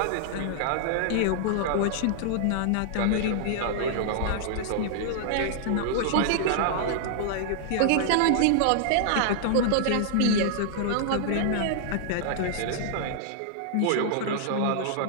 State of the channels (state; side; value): different; both; correlation -0.01